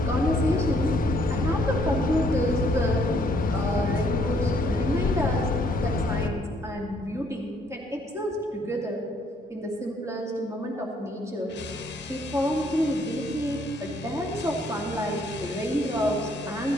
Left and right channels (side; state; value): both; normal; correlation 0.67